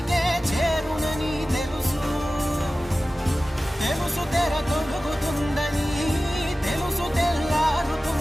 చేరునని తెలుసు తెలుసు తెర తొలుగుతుందని తెలుసు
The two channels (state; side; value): normal; both; correlation 0.96